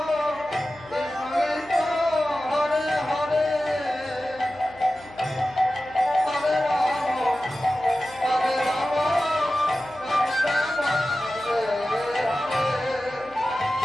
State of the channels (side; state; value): left; noise; hum, 22 dB below the sound